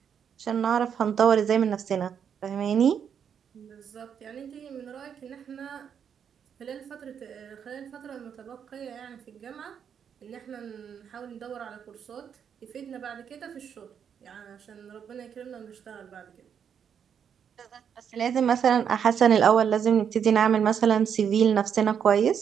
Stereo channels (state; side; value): quieter; left; 7.8 dB